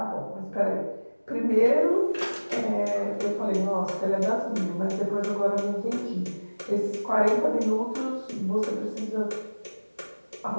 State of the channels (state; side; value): inverted; both; correlation -1.00